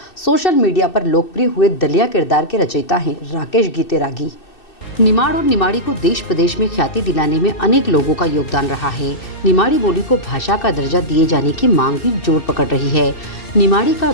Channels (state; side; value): late; right; 2.6 ms